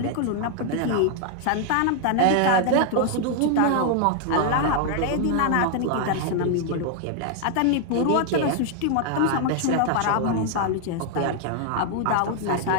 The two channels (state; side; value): different; both; correlation 0.00